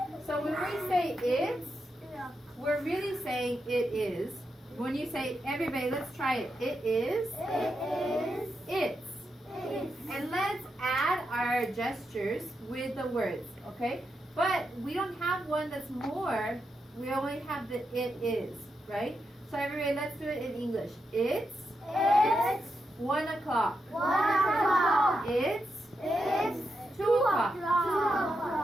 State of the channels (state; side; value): normal; both; correlation 0.85